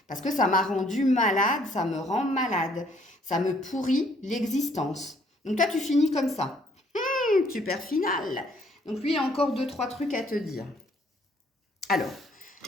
Parce que ça m'a rendu malade, ça me rend malade, ça me pourrit l'existence. Donc toi, tu finis comme ça. Super final. Donc lui, il a encore 2-3 trucs à te dire. Alors,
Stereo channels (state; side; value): normal; both; correlation 0.64